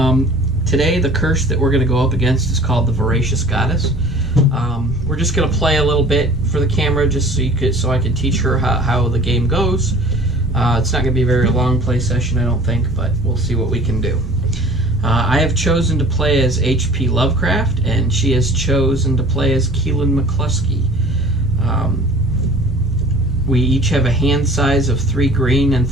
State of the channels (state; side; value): normal; both; correlation 0.47